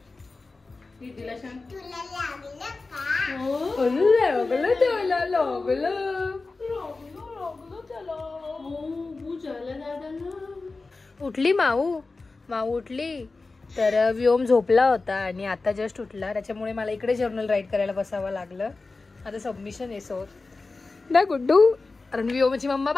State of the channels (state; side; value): quieter; right; 3.7 dB